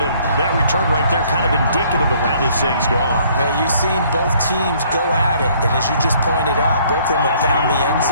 and that return right there kind of indicative of how this thing's gone. Well, you've seen both teams go at it, and as you just pointed out, both of them have found the end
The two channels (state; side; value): inverted; both; correlation -0.61